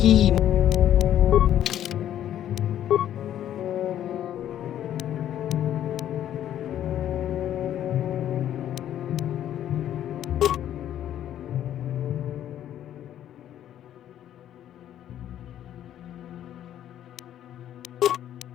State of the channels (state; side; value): quieter; right; 11.2 dB